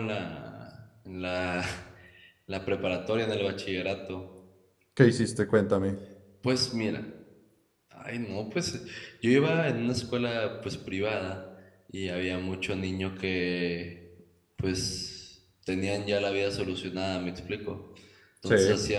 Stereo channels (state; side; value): identical; both; correlation 1.00